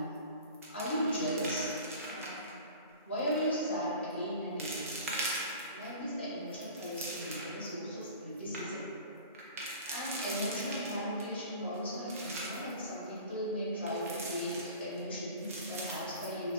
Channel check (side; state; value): both; inverted; correlation -0.40